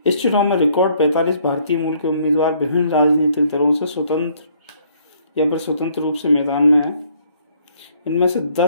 इस चुनाव में रिकॉर्ड 45 भारतीय मूल के उम्मीदवार विभिन्न राजनीतिक दलों से स्वतंत्र रूप से मैदान में हैं। इनमें से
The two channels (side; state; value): both; inverted; correlation -0.65